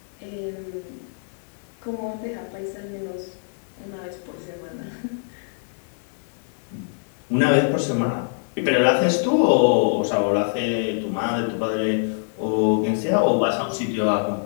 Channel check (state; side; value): silent; right; digital silence